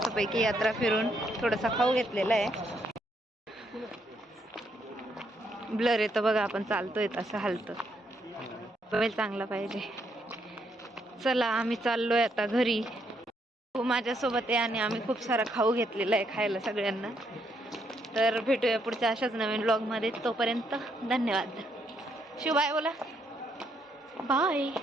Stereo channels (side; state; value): both; normal; correlation 0.75